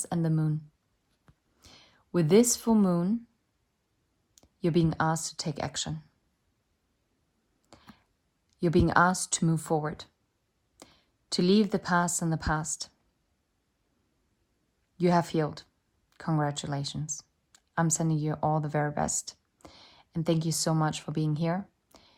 and the Moon. With this full moon, you're being asked to take action. You're being asked to move forward, to leave the past in the past. You have healed. Congratulations. I'm sending you all the very best. And thank you so much for being here.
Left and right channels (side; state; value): both; identical; correlation 1.00